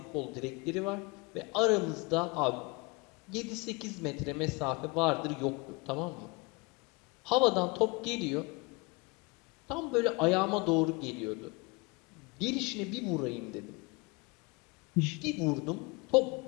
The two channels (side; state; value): right; quieter; 27.0 dB